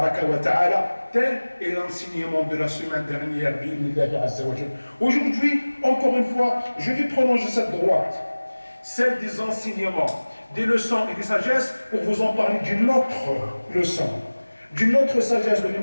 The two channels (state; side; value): inverted; both; correlation -1.00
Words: wa ta'ala. Tel est l'enseignement de la semaine dernière. Aujourd'hui, encore une fois, je vais prolonger cette droite, celle des enseignements, des leçons et des sagesses, pour vous en parler d'une autre leçon, d'une autre sagesse de